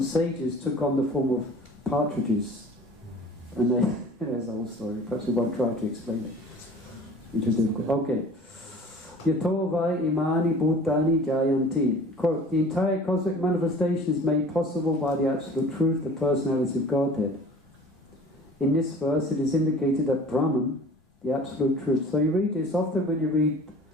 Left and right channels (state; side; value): normal; both; correlation 0.45